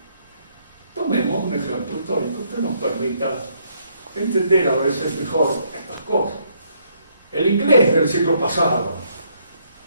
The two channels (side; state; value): both; inverted; correlation -0.70